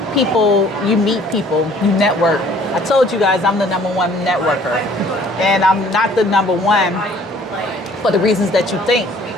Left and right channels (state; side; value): normal; both; correlation 0.55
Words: you meet people, you network. I told you guys I'm the #1 networker. And I'm not the #1 for the reasons that you think.